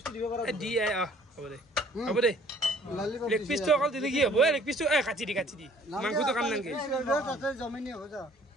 দিব পারা দিয়ে হ'ব দে লেগ পিস তো অকল দিলি কি হ'ব লেগ পিস তো কাটি দি মাংস তো কাম নাংগে তাতে জমিনি হৈ যা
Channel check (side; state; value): both; normal; correlation 0.56